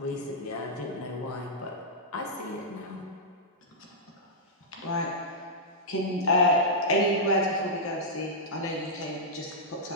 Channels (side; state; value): both; normal; correlation -0.10